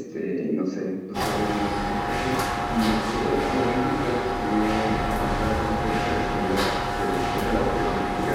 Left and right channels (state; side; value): identical; both; correlation 1.00